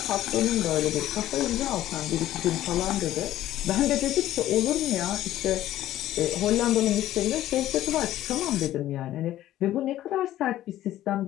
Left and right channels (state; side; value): quieter; right; 13.6 dB